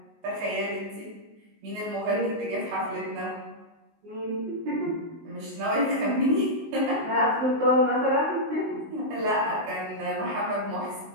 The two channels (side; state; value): left; late; 19 ms